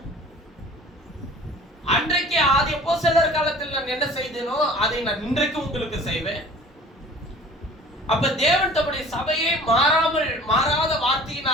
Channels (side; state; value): both; normal; correlation 0.46